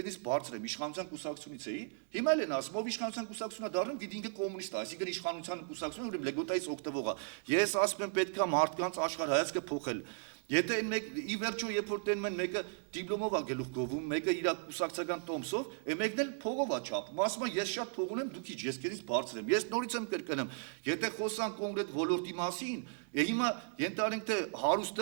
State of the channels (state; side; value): silent; left; 54 dB below the other